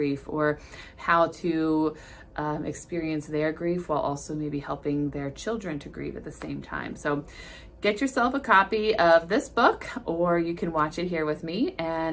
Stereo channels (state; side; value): identical; both; correlation 1.00